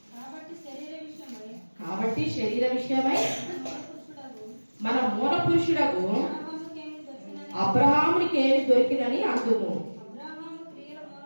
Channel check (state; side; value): inverted; both; correlation -1.00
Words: కాబట్టి శరీర విషయమై మన మూల పురుషుడకు అబ్రహామునికి ఏమి దొరికినని అందుము.